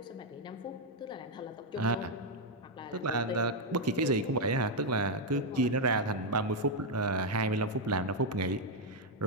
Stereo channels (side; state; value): both; normal; correlation 0.00